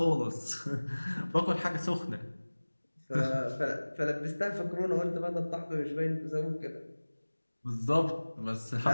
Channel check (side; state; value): both; inverted; correlation -1.00